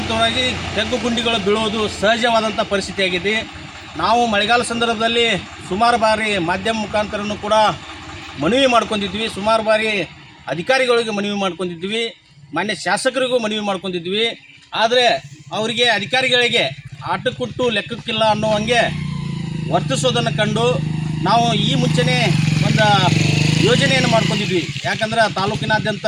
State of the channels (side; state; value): both; identical; correlation 1.00